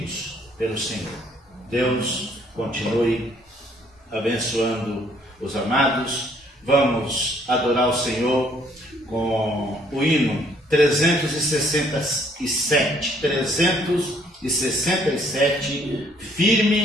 pelo Senhor. Deus continue abençoando os amados. Vamos adorar o Senhor com o hino 367. 367,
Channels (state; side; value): normal; both; correlation 0.64